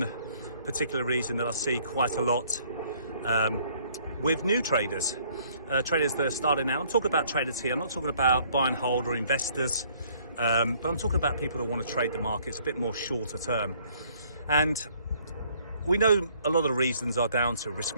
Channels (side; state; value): both; inverted; correlation -0.62